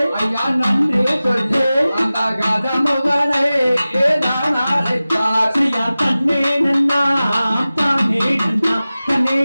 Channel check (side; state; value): both; inverted; correlation -0.96